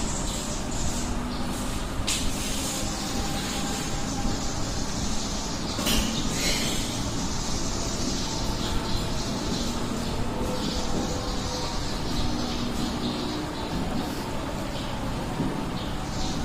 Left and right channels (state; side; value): identical; both; correlation 1.00